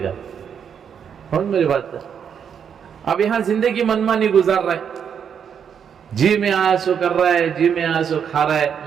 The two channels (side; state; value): left; quieter; 7.7 dB